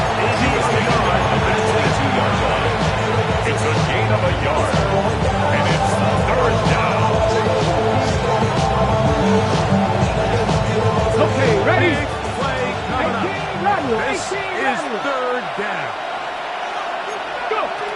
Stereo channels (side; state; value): both; identical; correlation 1.00